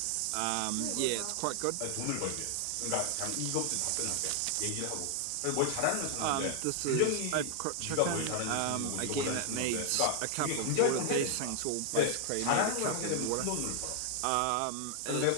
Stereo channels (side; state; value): both; different; correlation 0.00